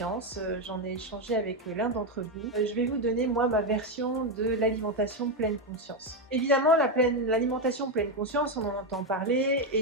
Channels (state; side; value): normal; both; correlation 0.06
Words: J'en ai échangé avec l'un d'entre vous. Je vais vous donner moi ma version de l'alimentation pleine conscience. Évidemment, l'alimentation pleine conscience, on en entend parler